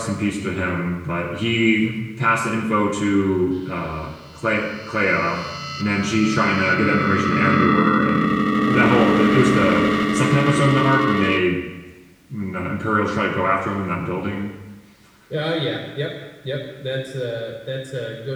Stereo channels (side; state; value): both; identical; correlation 1.00